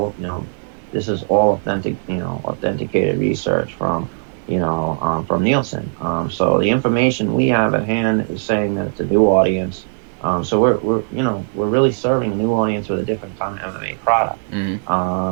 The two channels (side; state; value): left; silent; 65 dB below the other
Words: this is all authenticated research from Nielsen. So the information we have at hand is saying that it's a new audience. So we're really serving a new audience with a different kind of MMA product.